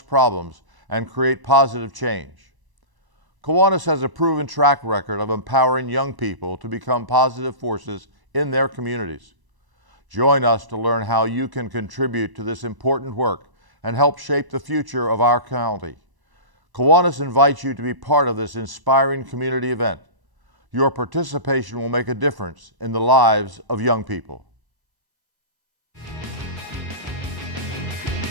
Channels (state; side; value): late; left; 1.0 ms